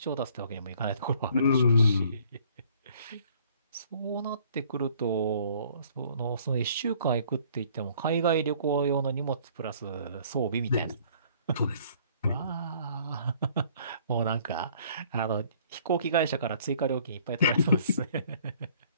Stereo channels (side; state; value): both; inverted; correlation -0.58